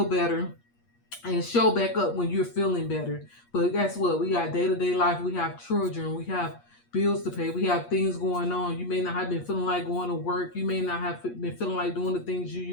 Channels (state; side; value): late; right; 8.4 ms